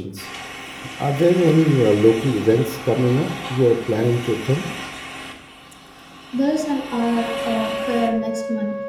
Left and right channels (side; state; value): both; identical; correlation 1.00